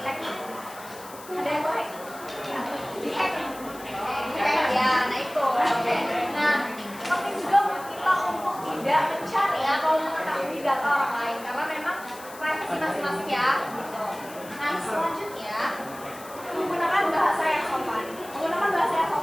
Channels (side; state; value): left; noise; hiss, 18 dB below the sound